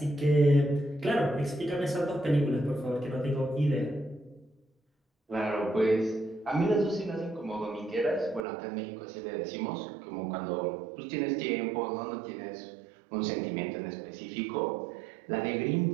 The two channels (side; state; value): left; drops out; at 8.5 s